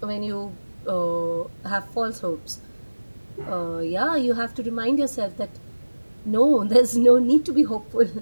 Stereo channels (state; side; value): inverted; both; correlation -1.00